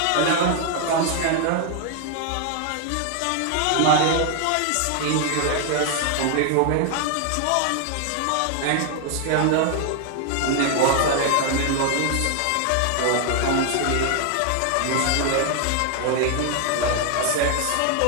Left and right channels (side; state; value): both; different; correlation 0.00